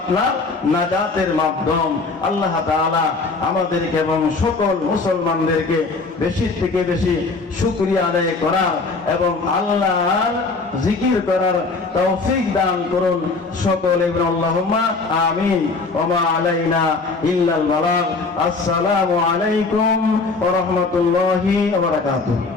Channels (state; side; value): quieter; right; 3.9 dB